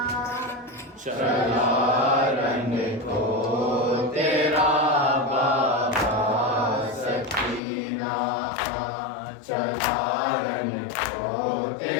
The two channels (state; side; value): drops out; right; at 7.6 s